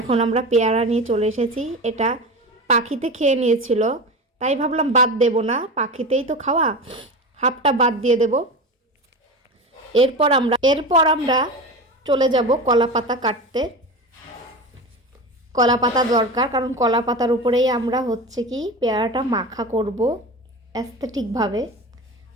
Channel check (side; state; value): both; normal; correlation 0.27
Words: আমরা পেয়ারা নিয়ে চলে এসেছি। এটা পাখিতে খেয়ে নিয়েছিল, তাই ভাবলাম বাদ দেব না, পাখিতেই তো খাওয়া, হাফটা বাদ দিয়ে দেব। এরপর আমরা চলে যাব কলা পাতা কাটতে। কলা পাতা দরকার, কারণ কলা পাতার উপরেই আমরা পেয়ারাটা মাখা করব অ্যাস্থেটিকভাবে।